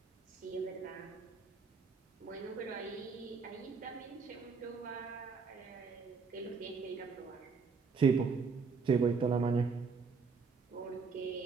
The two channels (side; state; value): left; quieter; 5.1 dB